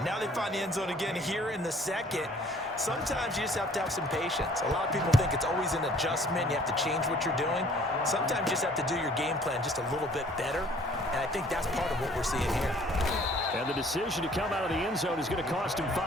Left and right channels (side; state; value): both; normal; correlation 0.56